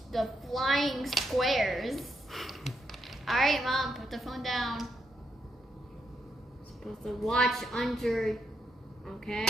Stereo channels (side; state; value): both; normal; correlation 0.81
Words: flying squares. All right, Mom, put the phone down. Supposed to watch under,